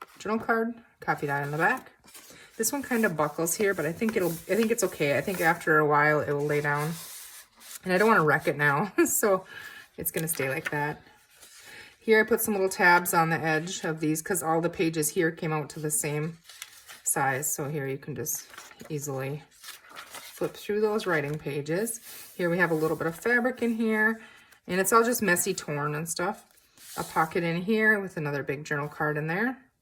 journal card, coffee dye on the back. This one kind of buckles here, but I think it's okay. I think after a while it will lay down. And I don't want to wreck it now, so it's gonna stay like that. Here I put some little tabs on the edge of these because all the pages here came out to the same size. So here you can just easily flip through those writing pages. Here we have a little bit of fabric in here, and it's all just messy torn and stuff. A pocket in here with another big journal card in there.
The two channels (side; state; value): both; identical; correlation 1.00